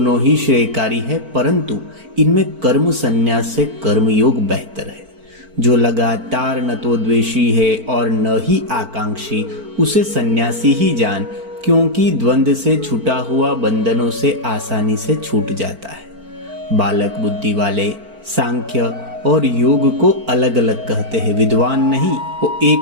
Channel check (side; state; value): left; late; 4.4 ms